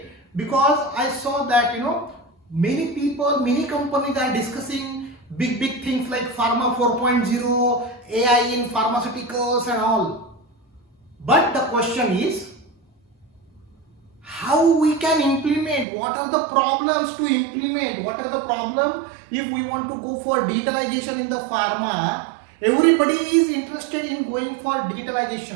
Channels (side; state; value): left; drops out; at 15.9 s